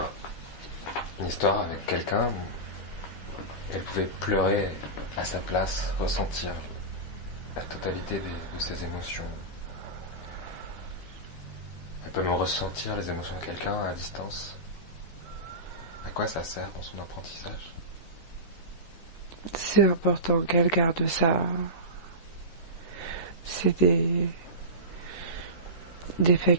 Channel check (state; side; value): late; right; 13 ms